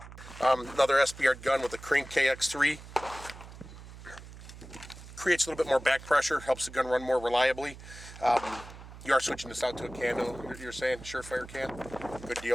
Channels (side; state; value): right; noise; hum, 15 dB below the sound